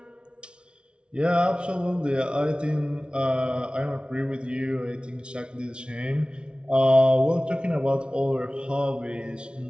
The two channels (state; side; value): late; left; 0.057 ms